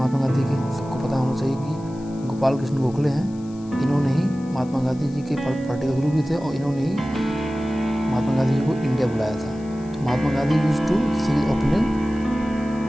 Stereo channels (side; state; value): left; noise; hiss, 26 dB below the sound